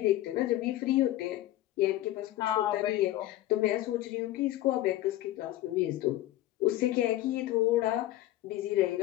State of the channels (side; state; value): right; quieter; 15.0 dB